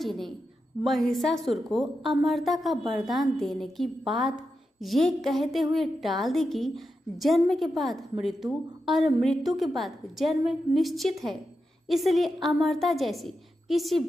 ने महिषासुर को अमरता का वरदान देने की बात ये कहते हुए टाल दी कि जन्म के बाद मृत्यु और मृत्यु के बाद जन्म निश्चित है, इसलिए अमरता जैसी किसी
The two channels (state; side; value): normal; both; correlation 0.88